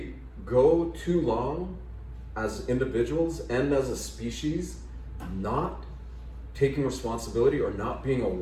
go too long as individuals and as a species not taking responsibility or not being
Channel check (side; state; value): both; identical; correlation 1.00